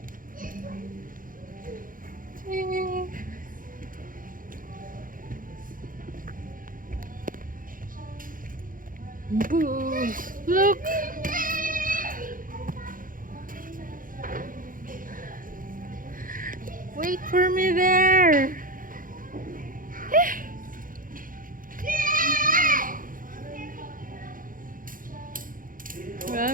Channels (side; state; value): left; late; 0.40 ms